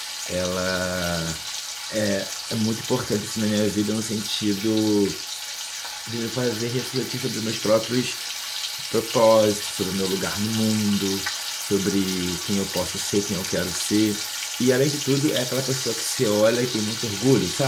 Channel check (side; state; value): both; identical; correlation 1.00